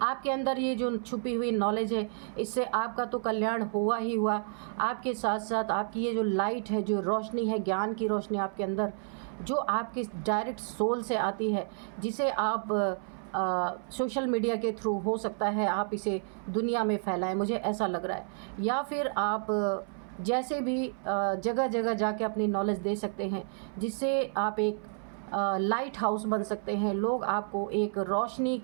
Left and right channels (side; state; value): left; silent; 57 dB below the other